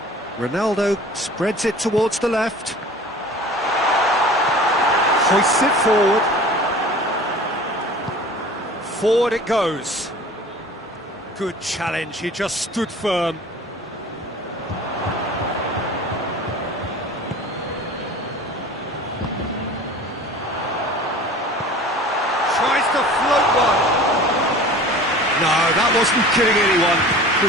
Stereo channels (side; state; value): both; normal; correlation 0.42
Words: Ronaldo spreads it towards the left. Hoists it forward. Forward it goes. Good challenge, he just stood firm. Tries to float one. No, that wasn't kidding anyone.